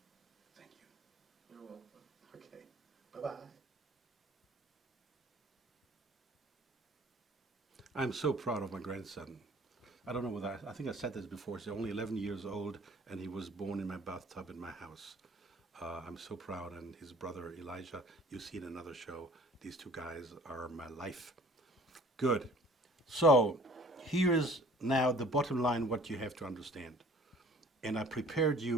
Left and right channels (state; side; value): normal; both; correlation 0.51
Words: Thank you. You're welcome. Okay, bye-bye. I'm so proud of my grandson. I don't know whether I think I said this before. He's only 11 years old, and he was born in my bathtub in my house. I'm so proud, and his brother Elijah, you see in another show, these two guys are my life. Good. So here is now the bottom line, what you have to understand. And I prepared